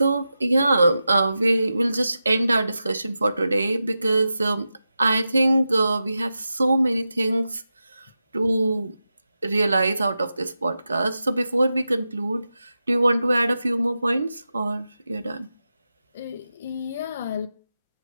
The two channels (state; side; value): inverted; both; correlation -0.91